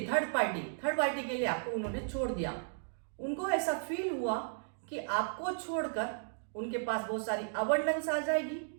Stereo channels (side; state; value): left; silent; digital silence